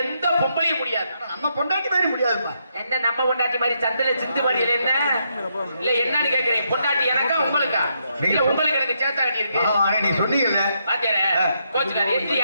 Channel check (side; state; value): both; inverted; correlation -0.78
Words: எந்த பொம்பளையும் முடியாது. நம்ம பொண்டாட்டி மாதிரி முடியாதுப்பா. என்ன நம்ம பொண்டாட்டி மாதிரி சந்தில சிந்து மாதிரி என்ன இல்ல என்னன்னு கேக்குறேன். பொண்டாட்டி எனக்கா உங்களுக்கா? இல்ல உங்களுக்கு எனக்கு சேத்தா கட்டி இருக்கு. நீ சொன்னீங்கல்ல பாத்தியாரே கோச்சுக்காரி. இது